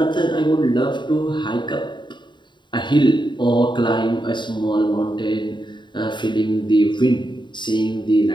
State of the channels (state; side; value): late; right; 0.22 ms